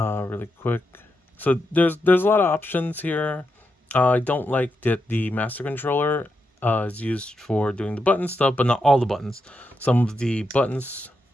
quick. So there's a lot of options here. I don't like that the master controller is used for doing the button stuff, but not all the buttons. Some of the buttons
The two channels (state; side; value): normal; both; correlation 0.85